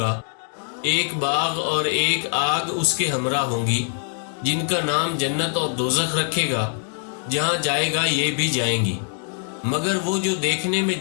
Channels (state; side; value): silent; right; 63 dB below the other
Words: ایک باغ اور ایک آگ اس کے ہمراہ ہوں گی، جن کا نام جنت اور دوزخ رکھے گا۔ جہاں جائے گا یہ بھی جائیں گی، مگر وہ جو دیکھنے میں